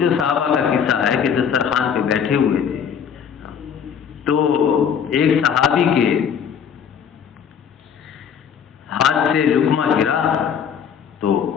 صحابہ کا قصہ ہے کہ دسترخوان پہ بیٹھے ہوئے تھے تو ایک صحابی کے ہاتھ سے لقمہ گرا تو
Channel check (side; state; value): right; quieter; 7.6 dB